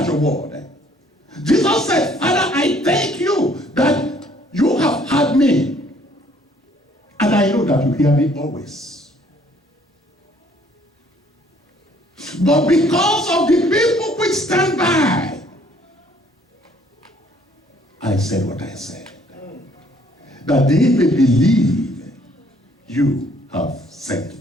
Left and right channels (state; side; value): normal; both; correlation 0.61